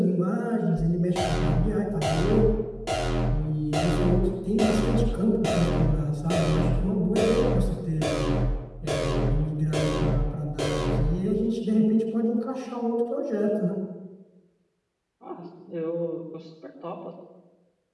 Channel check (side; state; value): both; identical; correlation 1.00